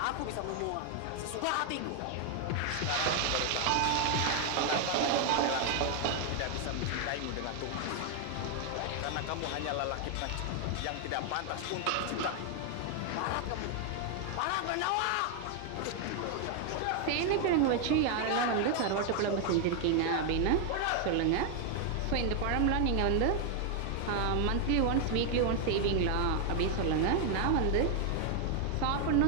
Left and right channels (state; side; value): different; both; correlation 0.00